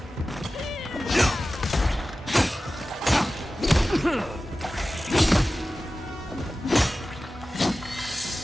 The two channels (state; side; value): normal; both; correlation 0.95